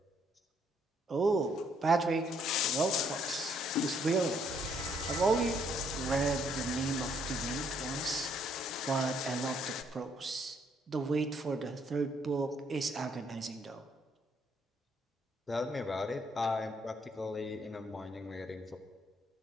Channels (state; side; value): normal; both; correlation 0.69